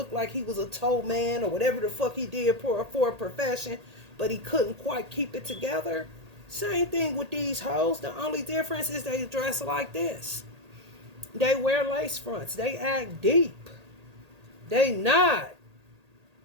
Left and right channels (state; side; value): late; left; 1.8 ms